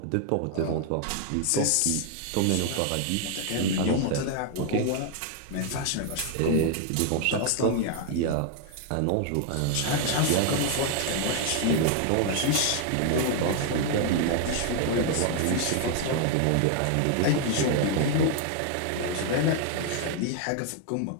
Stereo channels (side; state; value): both; different; correlation 0.00